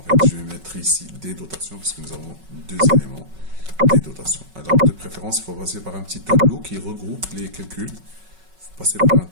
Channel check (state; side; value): late; left; 5.3 ms